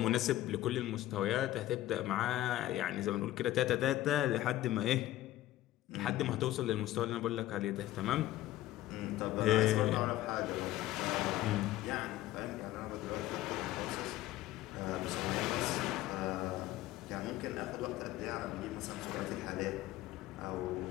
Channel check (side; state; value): right; quieter; 14.9 dB